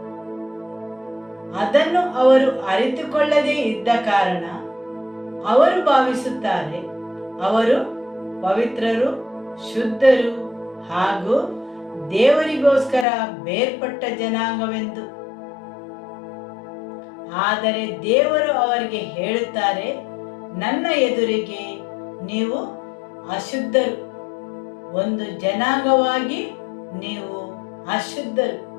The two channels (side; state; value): right; drops out; at 13.1 s